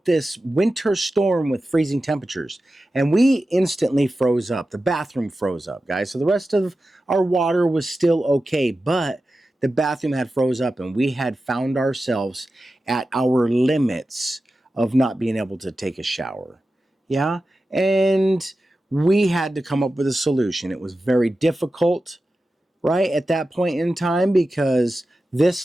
this winter storm with freezing temperatures, and we instantly froze up. The bathroom froze up, guys. So the rest of our water was still okay, but the bathroom had froze up, and we had found ourselves at our limits of not being able to take a shower. Yeah, and we had to come up with a solution. It was very difficult, right, at that point in time, because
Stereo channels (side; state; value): both; normal; correlation 0.93